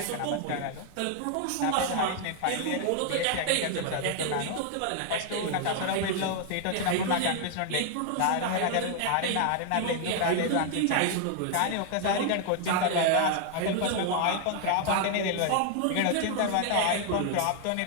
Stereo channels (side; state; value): both; different; correlation 0.00